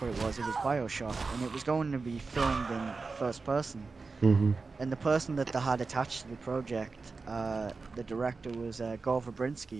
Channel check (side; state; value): left; quieter; 4.2 dB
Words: what it was. It was BioShock, and it was going to be filmed in first person. Mhm. And the person that they had attached to the project, the director was Gore